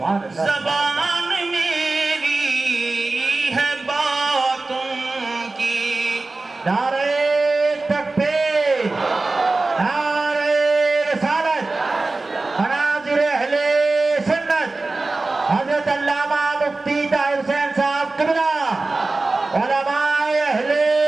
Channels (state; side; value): quieter; left; 3.4 dB